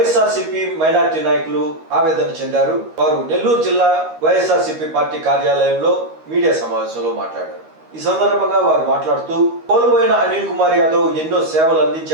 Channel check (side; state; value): left; late; 13 ms